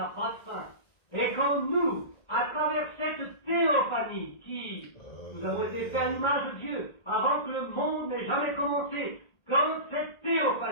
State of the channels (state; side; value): late; right; 1.7 ms